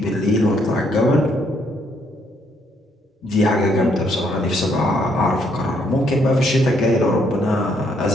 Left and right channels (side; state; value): both; normal; correlation 0.71